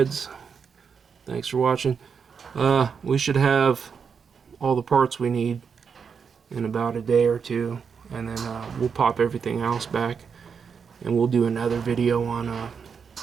Thanks for watching. We should have all the parts we need in about a day or two, and then we'll pop everything else back, and we'll do another video on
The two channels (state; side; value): quieter; left; 6.2 dB